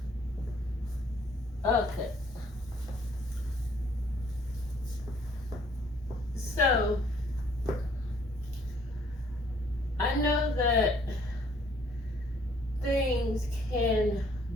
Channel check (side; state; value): both; normal; correlation 0.62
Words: Okay, so I know that things can